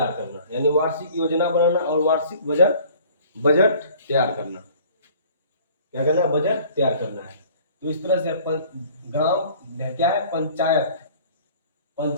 करना, यानी वार्षिक योजना बनाना और वार्षिक बजट तैयार करना। क्या करना है? बजट तैयार करना है। तो इस तरह से ग्राम क्या है?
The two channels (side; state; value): both; inverted; correlation -0.51